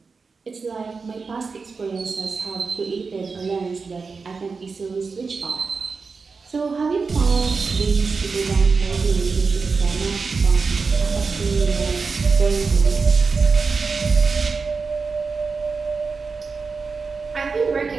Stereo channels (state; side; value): quieter; left; 4.7 dB